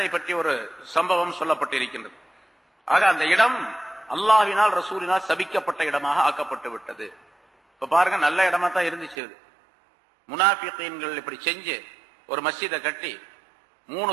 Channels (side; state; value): left; drops out; at 9.2 s